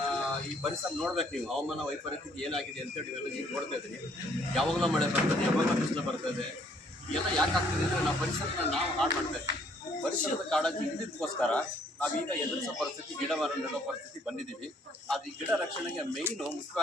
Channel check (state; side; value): normal; both; correlation 0.64